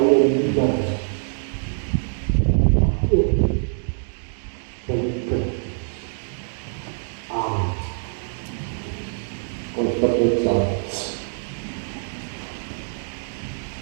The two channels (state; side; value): silent; left; 63 dB below the other